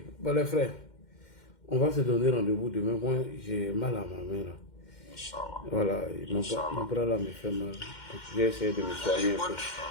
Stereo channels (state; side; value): late; right; 2.1 ms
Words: bon les frères, on va se donner rendez-vous demain. Moi, j'ai mal à ma main là. Inch'Allah. Voilà, mon bras là me fait mal. Je vais essayer de me soigner un peu.